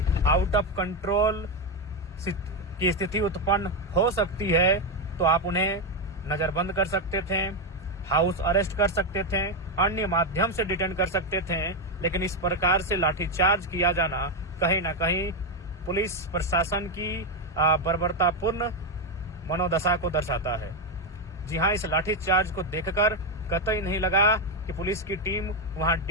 आउट ऑफ कंट्रोल की स्थिति उत्पन्न हो सकती है, तो आप उन्हें नजरबंद कर सकते थे, हाउस अरेस्ट कर सकते थे, अन्य माध्यम से डिटेन कर सकते थे। लेकिन इस प्रकार से लाठीचार्ज किया जाना कहीं न कहीं पुलिस प्रशासन की बर्बरतापूर्ण मनोदशा को दर्शाता है। जी हाँ, इस लाठीचार्ज को देखकर कतई नहीं लगा कि पुलिस की टीम वहां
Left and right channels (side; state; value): both; normal; correlation 0.06